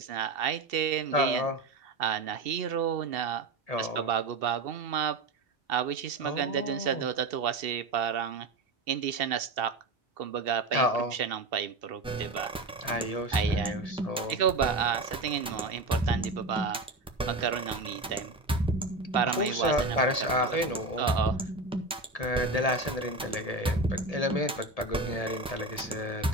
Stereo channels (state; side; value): quieter; left; 3.1 dB